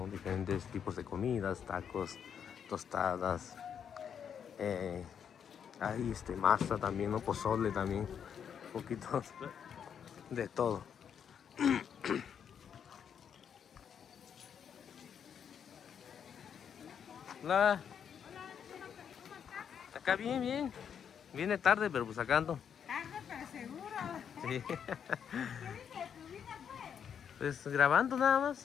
Diferentes tipos de comidas, tacos, tostadas. Hay masa también, ¿no? Pozole también. Un poquito de todo. Hola. Acá bien, bien. Viene tarde, pero pues acá ando. Tarde, pero seguro. Sí. ¿Qué dice de tu vida, pues? Pues grabando nada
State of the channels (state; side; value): quieter; right; 7.9 dB